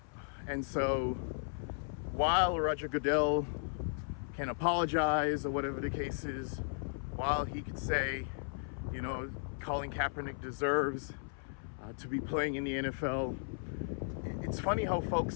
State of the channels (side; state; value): right; silent; 54 dB below the other